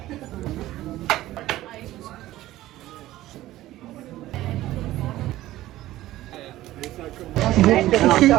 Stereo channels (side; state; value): left; quieter; 15.4 dB